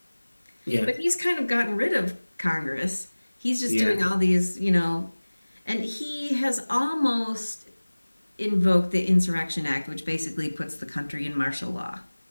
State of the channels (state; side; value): inverted; both; correlation -1.00